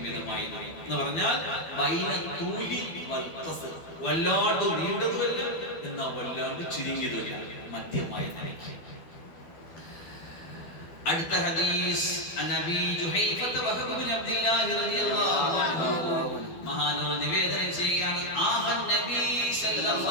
മിതമായിരുന്നു എന്ന് പറഞ്ഞാൽ വല്ലാണ്ട് നീണ്ടതുമല്ല, എന്നാ വല്ലാണ്ട് ചുരുങ്ങിയതുമല്ല, മധ്യമായ നിലയ്ക്ക്. അടുത്ത ഹദീസ് നബി ജുഹൈഫത്ത് വഹബ് ബിൻ അബ്ദുല്ലാഹി റളിയല്ലാഹു അൻഹു മഹാനവർ നിവേദനം ചെയ്യുകയാണ്. ആഹൻ നബി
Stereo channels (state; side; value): late; right; 12 ms